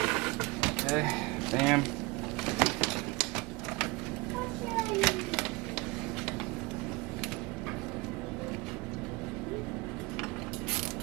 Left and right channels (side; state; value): left; quieter; 24.9 dB